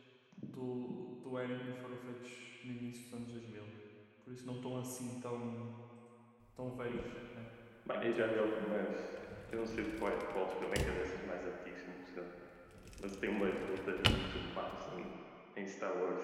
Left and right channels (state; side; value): identical; both; correlation 1.00